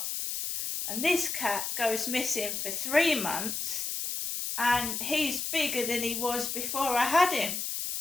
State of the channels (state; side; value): noise; left; hiss, 3 dB below the sound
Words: And this cat goes missing for 3 months and he's bigger than he was before I had him.